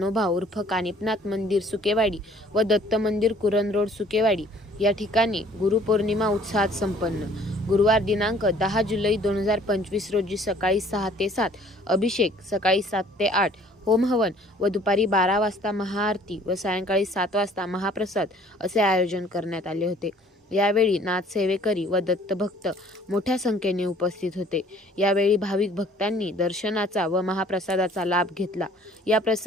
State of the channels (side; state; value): both; normal; correlation 0.55